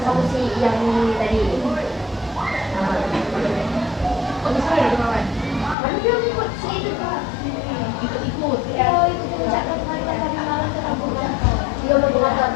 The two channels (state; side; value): drops out; right; at 5.8 s